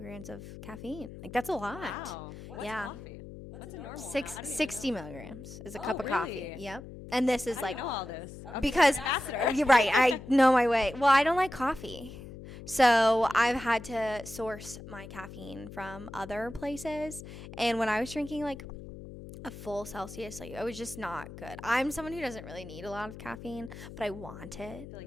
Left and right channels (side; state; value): left; noise; hum, 13 dB below the sound